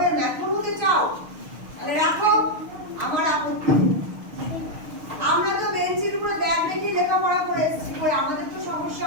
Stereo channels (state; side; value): late; left; 6.5 ms